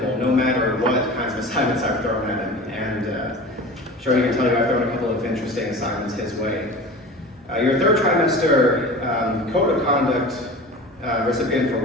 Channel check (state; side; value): normal; both; correlation 0.36